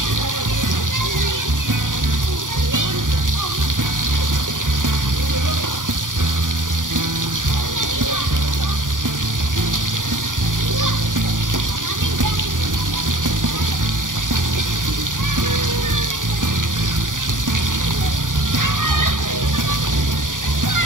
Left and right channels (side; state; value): left; late; 0.88 ms